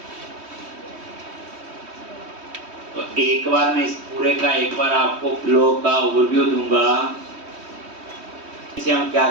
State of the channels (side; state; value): left; late; 3.1 ms